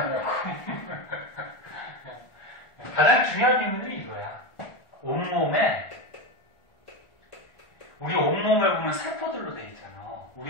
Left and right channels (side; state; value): right; late; 1.4 ms